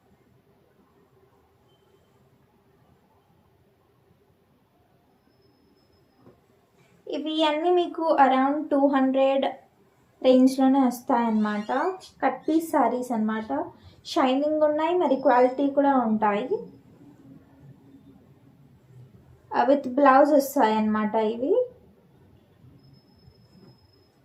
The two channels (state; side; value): identical; both; correlation 1.00